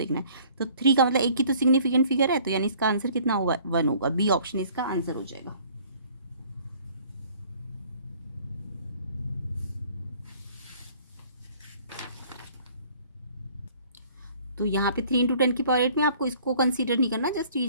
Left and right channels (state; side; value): inverted; both; correlation -0.55